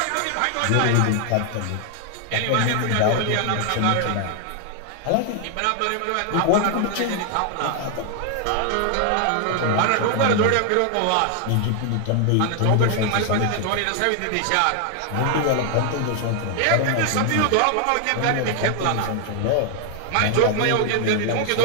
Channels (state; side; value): different; both; correlation 0.00